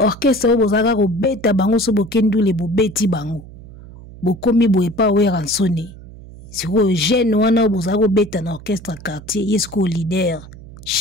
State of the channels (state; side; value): noise; right; hum, 17 dB below the sound